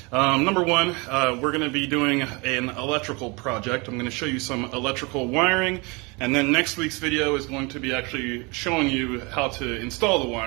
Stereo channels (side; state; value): left; quieter; 28.2 dB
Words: Number one, we're going to be doing an electrical project. I'm going to show you some electrical wiring, and then next week's video is going to be actually showing you how to install the